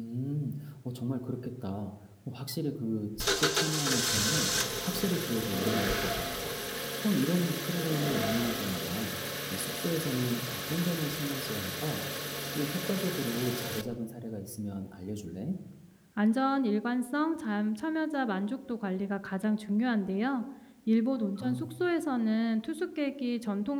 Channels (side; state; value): both; identical; correlation 1.00